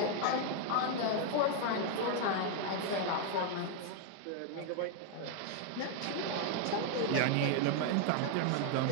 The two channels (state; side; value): different; both; correlation 0.00